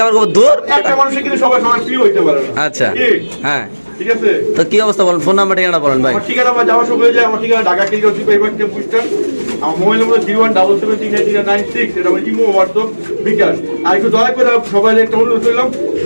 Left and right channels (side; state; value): both; inverted; correlation -1.00